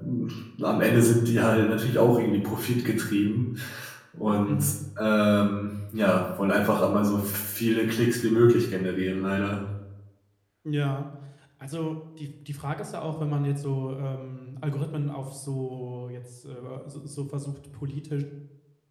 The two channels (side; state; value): both; identical; correlation 1.00